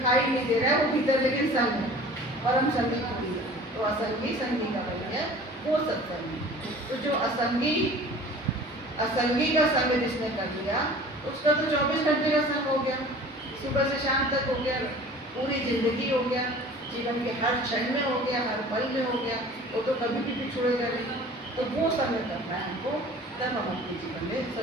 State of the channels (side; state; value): both; normal; correlation 0.44